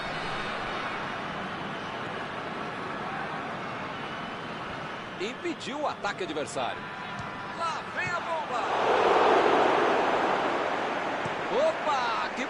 Impediu o ataque adversário. Lá vem a bomba. Opa, que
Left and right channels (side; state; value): both; identical; correlation 1.00